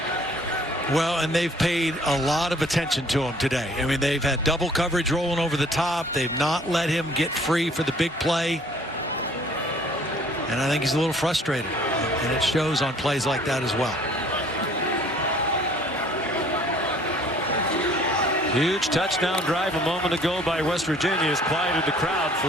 Well, and they've paid a lot of attention to him today. I mean, they've had double coverage rolling over the top. They've not let him get free for the big play. And I think he's a little frustrated. And it shows on plays like that as well. Huge touchdown drive a moment ago by West Virginia has quieted the crowd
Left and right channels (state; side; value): normal; both; correlation 0.56